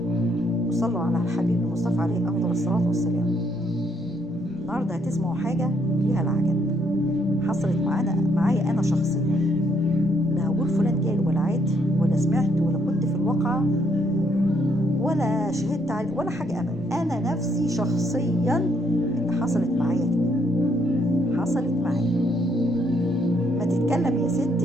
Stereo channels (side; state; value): both; normal; correlation 0.71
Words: وصلوا على الحبيب المصطفى عليه افضل الصلاة والسلام. النهارده هتسمعوا حاجة فيها العجب حصلت معايا انا شخصيا. لا هقول فلان قال ولا عاد ولا سمعت ولا كنت في الواقعة ولا شهدت عليه ولا حاجة ابدا. انا نفسي شخصيا اللي حصلت معايا كده حصلت معايا. ما تتكلم يا ست،